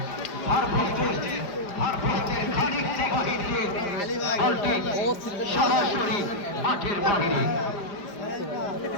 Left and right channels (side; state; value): right; late; 4.9 ms